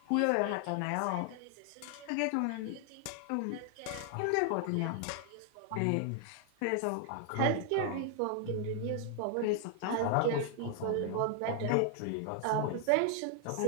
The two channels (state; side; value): different; both; correlation 0.00